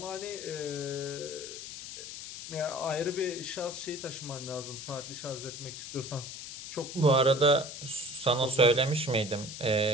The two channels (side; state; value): left; noise; hiss, 10 dB below the sound